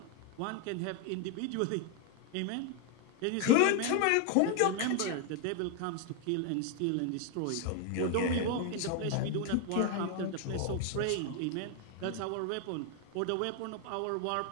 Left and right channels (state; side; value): different; both; correlation 0.01